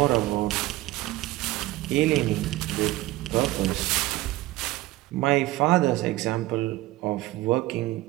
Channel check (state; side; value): quieter; left; 17.8 dB